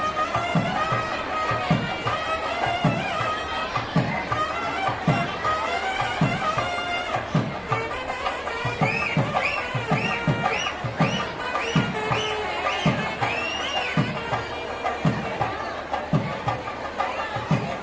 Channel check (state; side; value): identical; both; correlation 1.00